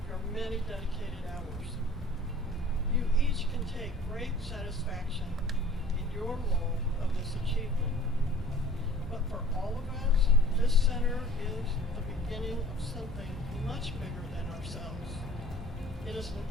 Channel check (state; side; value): normal; both; correlation 0.48